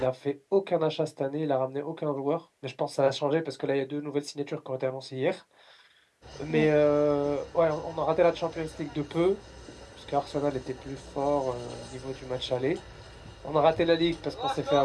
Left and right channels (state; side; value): identical; both; correlation 1.00